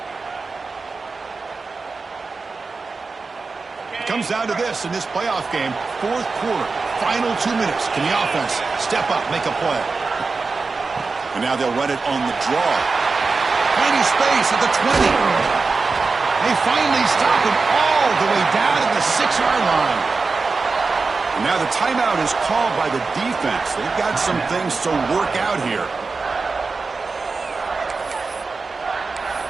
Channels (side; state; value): left; quieter; 4.2 dB